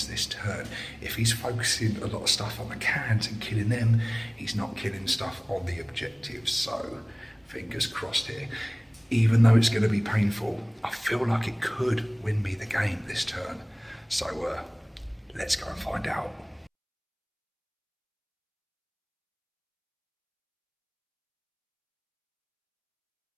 this turn. If he's focusing a lot of stuff on the cans and killing them, he's not killing stuff on the objectives. So fingers crossed here. Even though it's going to be painful, I feel like it could win me the game this turn. So let's go and find out.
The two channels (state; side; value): identical; both; correlation 1.00